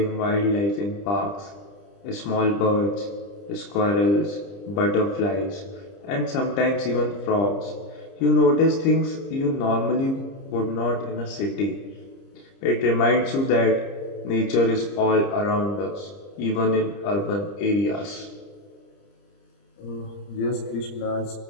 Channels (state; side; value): late; right; 30 ms